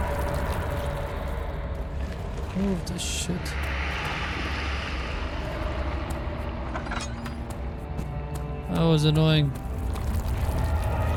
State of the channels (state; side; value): identical; both; correlation 1.00